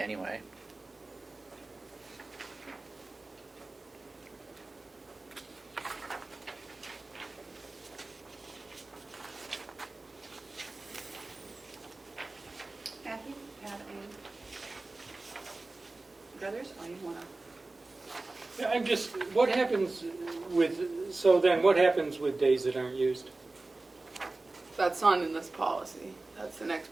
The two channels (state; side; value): quieter; left; 3.2 dB